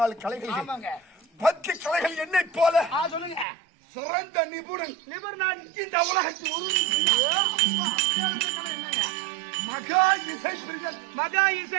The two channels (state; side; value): drops out; left; at 3.5 s